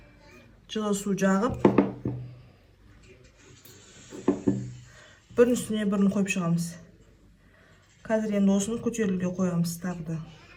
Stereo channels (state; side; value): identical; both; correlation 1.00